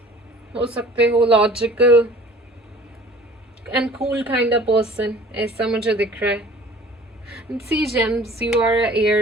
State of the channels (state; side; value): normal; both; correlation 0.48